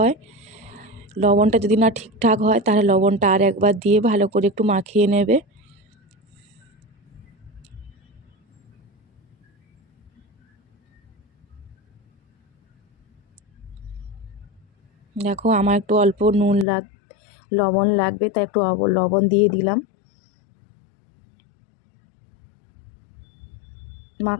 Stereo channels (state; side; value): drops out; right; at 16.7 s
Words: লবণটা যদি না ঠিকঠাক হয় তাহলে লবণটা আর একবার দিয়ে ভালো করে একটু মাখিয়ে নেবে। দেখো আমার একটু অল্প লবণ লাগবে, তাই একটু লবণ দিয়ে দিলাম।